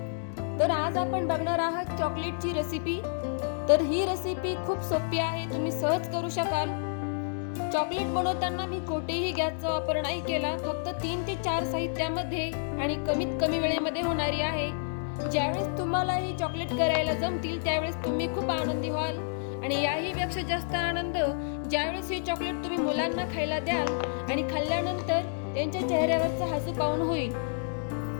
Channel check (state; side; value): silent; right; digital silence